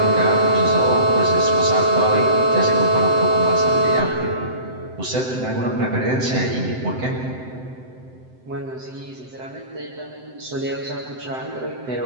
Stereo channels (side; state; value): left; late; 7.8 ms